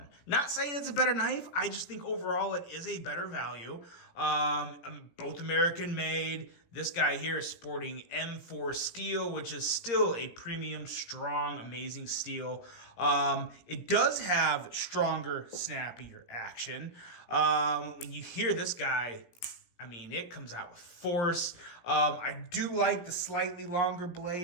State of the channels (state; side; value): late; right; 17 ms